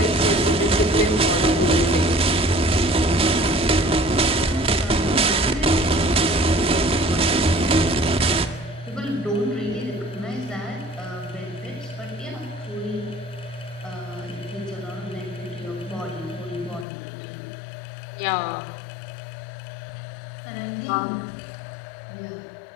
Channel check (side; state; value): right; drops out; at 16.9 s